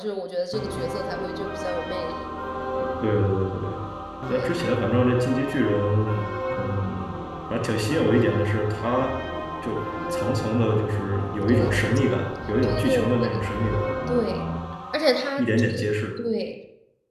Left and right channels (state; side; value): identical; both; correlation 1.00